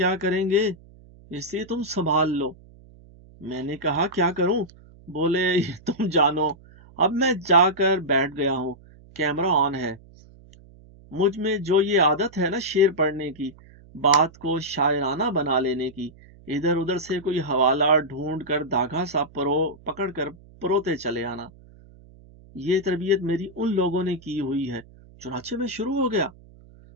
کریں گے؟ اس لیے تم سنبھال لو۔ میں نے کہا کیا کروں؟ بولے یہ تم جانو۔ اب میں جا کر بیٹھ گیا ہوں، کیمرہ آن ہے۔ مجھ میں جو یہ عادت ہے نا شعر پڑھنے کی، بات کو شاعرانہ بنا لینے کی، ادھر ادھر سے کوئی حوالہ ڈھونڈ کر دھاگا سا پکڑ کر پروتے چلے آنا، یہ تربیت میری ان لوگوں نے کی ہوئی ہے۔ چنانچہ میں شروع ہو گیا۔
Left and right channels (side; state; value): right; noise; hum, 24 dB below the sound